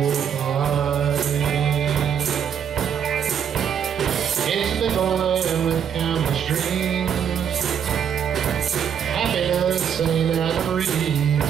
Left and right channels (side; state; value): left; quieter; 8.2 dB